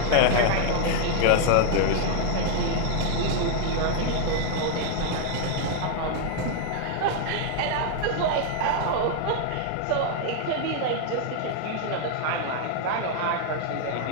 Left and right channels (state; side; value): different; both; correlation 0.00